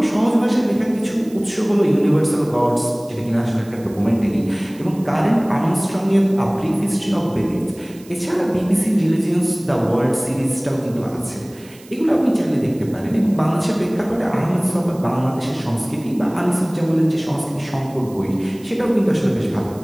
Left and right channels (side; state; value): right; noise; hiss, 24 dB below the sound